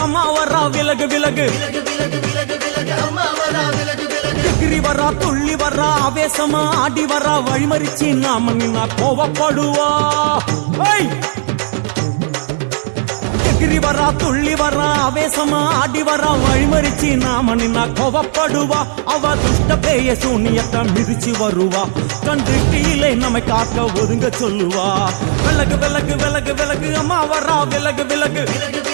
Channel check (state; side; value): silent; left; digital silence